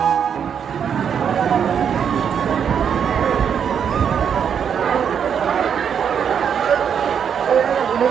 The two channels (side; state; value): left; quieter; 7.7 dB